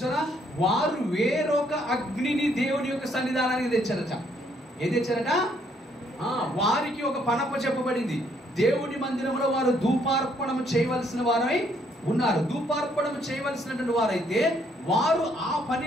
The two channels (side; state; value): both; normal; correlation 0.69